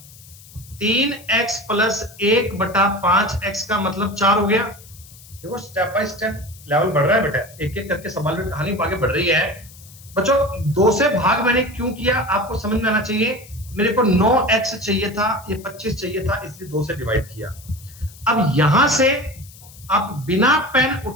3x प्लस 1 बटा 5x का मतलब 4 हो गया। देखो स्टेप बाय स्टेप लेवल बढ़ रहा है बेटा, एक एक करके सवाल में कहानी आगे बढ़ रही है बच्चों। 2 से भाग मैंने क्यों किया आपको समझ में आना चाहिए। मेरे को 9x चाहिए था, ये 25 चाहिए था, इसलिए 2 से डिवाइड किया। अब यहां से आप बिना पेन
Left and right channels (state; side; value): noise; left; hiss, 21 dB below the sound